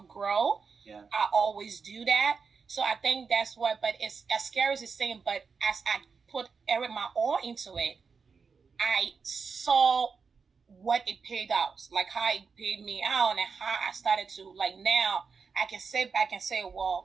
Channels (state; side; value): quieter; left; 5.3 dB